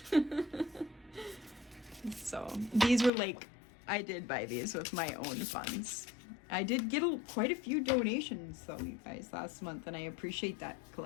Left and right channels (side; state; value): right; drops out; at 3.1 s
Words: So, these were like, I did buy these with my own funds. I did get quite a few donations, though, you guys, last month, and I appreciate that,